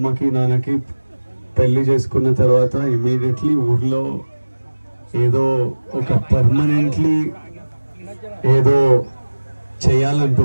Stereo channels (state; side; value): inverted; both; correlation -1.00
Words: నాన్నకి పెళ్లి చేసుకున్న తర్వాత ఇమీడియట్లీ ఊర్లో ఏదో ఒక పర్మనెంట్లీ ఏదో